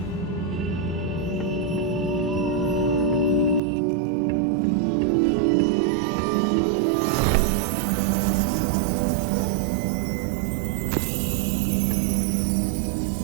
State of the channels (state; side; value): drops out; left; at 3.6 s